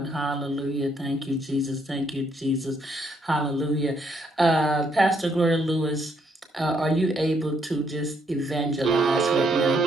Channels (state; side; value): normal; both; correlation 0.72